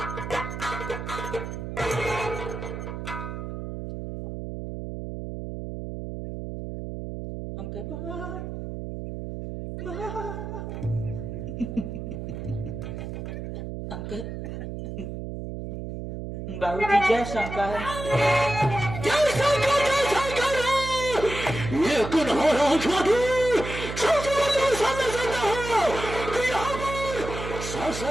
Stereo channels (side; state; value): right; noise; hum, 7 dB below the sound